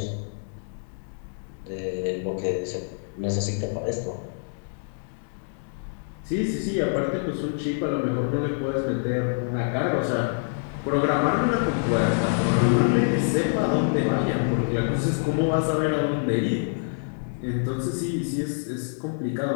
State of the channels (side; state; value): right; silent; digital silence